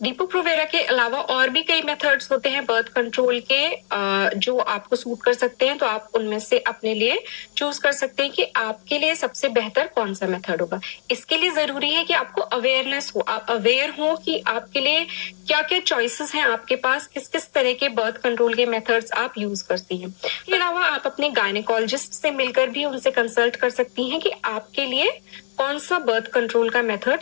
के अलावा और भी कई मेथड्स होते हैं बर्थ कंट्रोल के जो आपको सूट कर सकते हैं, तो आप उनमें से अपने लिए चूज कर सकते हैं कि आपके लिए सबसे बेहतर कौन सा मेथड होगा। इसके लिए जरूरी है कि आपको अवेयरनेस हो, आप अवेयर हो कि आपके लिए क्या क्या चॉइसेस हैं आपके पास, किस किस तरह के बर्थ कंट्रोल के मेथड्स आप यूज करती हैं। इसके अलावा आप अपने गायनेकोलॉजिस्ट से मिलकर भी उनसे कंसल्ट कर सकती हैं कि आपके लिए कौन सा बर्थ कंट्रोल का मेथड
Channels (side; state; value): right; silent; digital silence